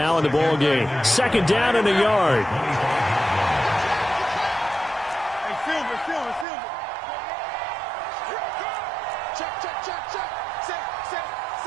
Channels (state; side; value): drops out; left; at 6.5 s